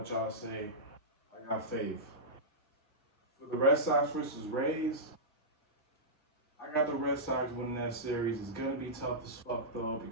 y'all say. I got faith. For the Red Sox versus Rays, I got the Red Sox winning that series. It's gonna be tough as fuck though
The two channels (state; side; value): normal; both; correlation -0.14